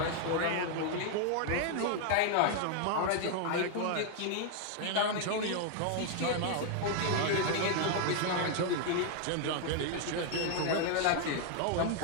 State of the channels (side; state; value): both; different; correlation 0.00